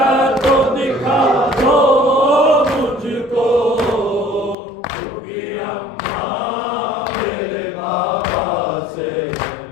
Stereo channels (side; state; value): right; drops out; at 4.5 s